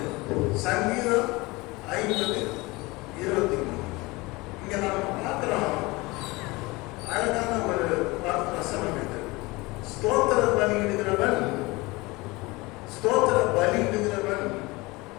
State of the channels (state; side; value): quieter; right; 23.0 dB